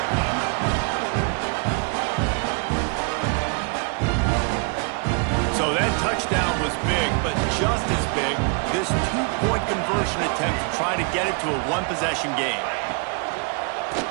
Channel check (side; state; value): left; quieter; 36.1 dB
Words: So that touchdown was big, but just as big, this 2-point conversion attempt to try to get it to a 1-possession game.